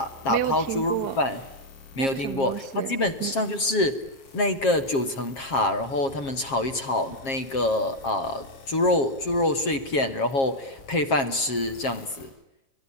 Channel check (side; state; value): right; late; 7.4 ms